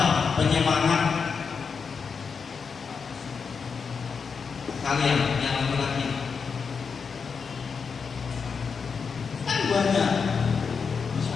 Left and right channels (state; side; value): quieter; right; 5.7 dB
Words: penyemangat kalian yang laki-laki? Kan banyak, bisa